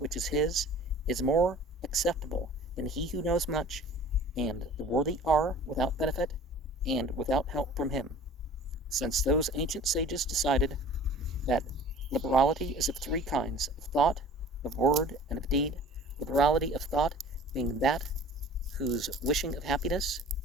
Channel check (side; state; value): both; normal; correlation 0.45